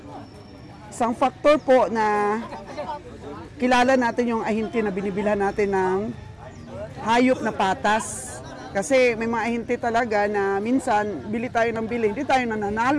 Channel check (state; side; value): identical; both; correlation 1.00